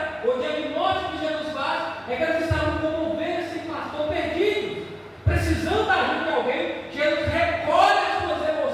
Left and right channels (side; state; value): both; identical; correlation 1.00